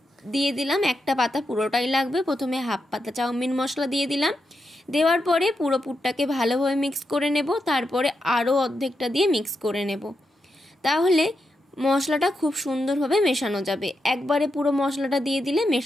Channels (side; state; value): both; normal; correlation 0.85